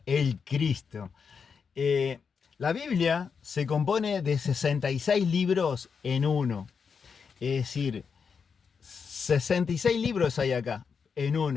el Cristo. La Biblia se compone de 66 libros en uno. Es decir, 66 libros hay acá, en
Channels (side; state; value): right; quieter; 6.0 dB